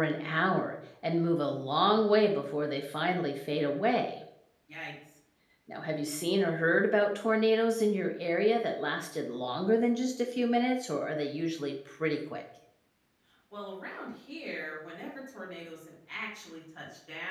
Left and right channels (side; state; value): both; identical; correlation 1.00